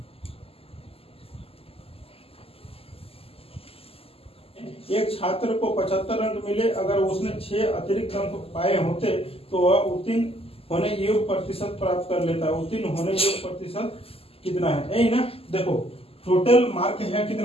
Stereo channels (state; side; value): late; right; 0.28 ms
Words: एक छात्र को 75 अंक मिले, अगर उसने 6 अतिरिक्त अंक पाए होते तो वह उत्तीर्ण होने योग्य प्रतिशत प्राप्त कर लेता है। उत्तीर्ण होने योग्य प्रतिशत कितना है, यही ना। देखो टोटल मार्क है